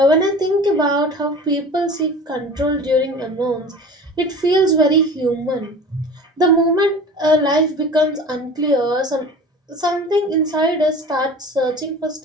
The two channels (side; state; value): both; normal; correlation 0.39